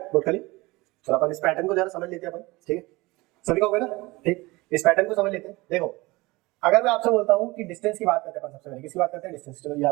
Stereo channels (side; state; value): left; quieter; 22.1 dB